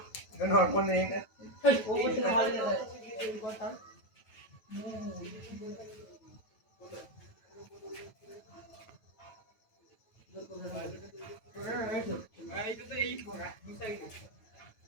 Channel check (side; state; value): right; late; 9.1 ms